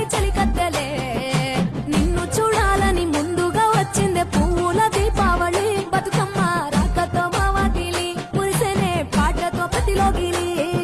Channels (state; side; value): identical; both; correlation 1.00